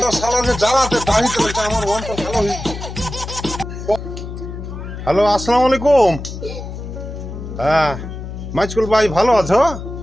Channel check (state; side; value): noise; left; hum, 9 dB below the sound